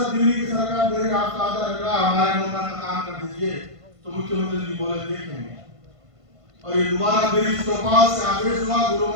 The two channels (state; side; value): late; left; 1.5 ms